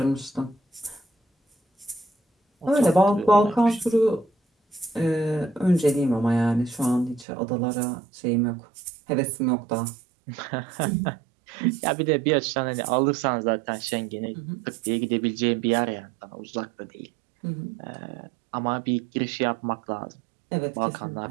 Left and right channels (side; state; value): left; drops out; at 7.2 s